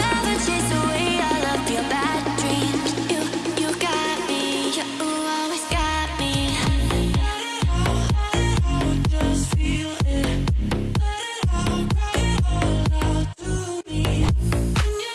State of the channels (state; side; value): identical; both; correlation 1.00